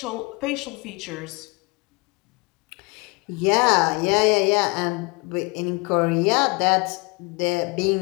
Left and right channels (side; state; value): right; quieter; 28.3 dB